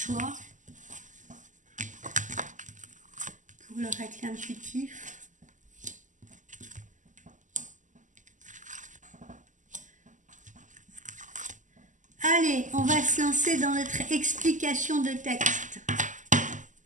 pour le règle intuitif. Allez, on va se lancer dans notre explication de texte.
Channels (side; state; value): left; late; 0.37 ms